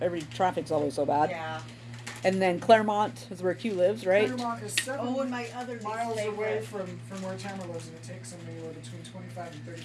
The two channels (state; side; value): identical; both; correlation 1.00